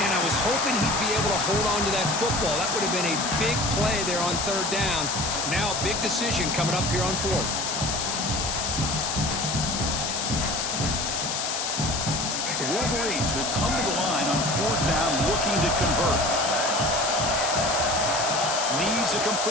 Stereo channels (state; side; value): noise; left; hiss, 2 dB below the sound